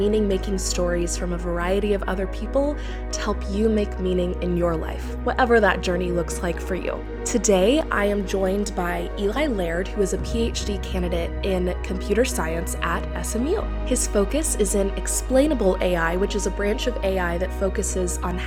stories from a variety of other people to help you make meaning in your life, whatever that journey looks like for you. Today, I am joined by Eli Laird, who is a PhD candidate in computer science at SMU. His focus is in explainable AI, which is a branch of AI that focuses on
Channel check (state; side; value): identical; both; correlation 1.00